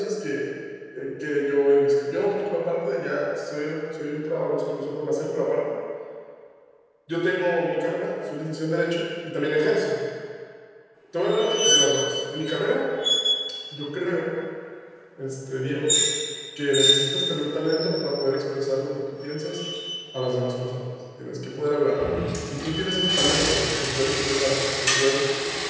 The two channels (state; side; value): identical; both; correlation 1.00